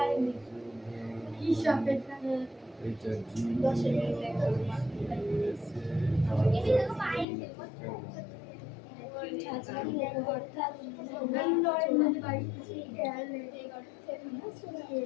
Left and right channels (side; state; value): right; drops out; at 7.2 s